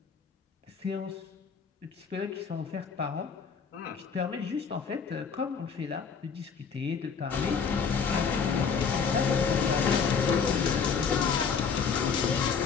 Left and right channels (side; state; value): right; quieter; 6.0 dB